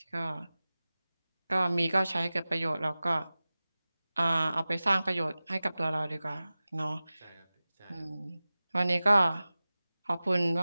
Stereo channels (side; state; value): both; inverted; correlation -0.97